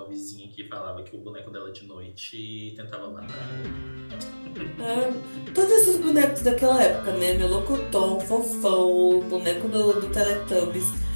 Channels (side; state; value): both; inverted; correlation -1.00